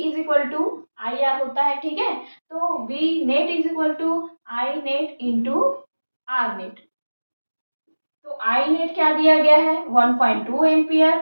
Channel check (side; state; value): both; inverted; correlation -1.00